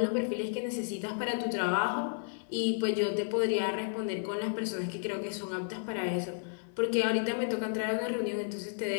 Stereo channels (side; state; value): right; silent; 56 dB below the other